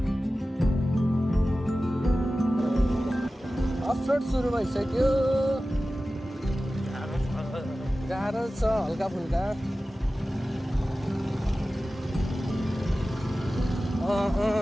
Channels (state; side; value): normal; both; correlation 0.95